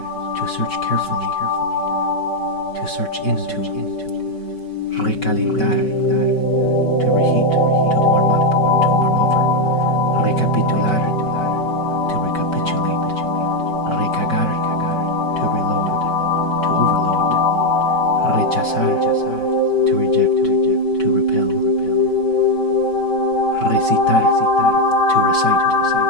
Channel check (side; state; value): right; late; 5.3 ms